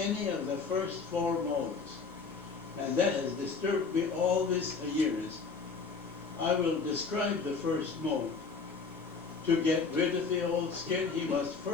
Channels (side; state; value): right; quieter; 4.8 dB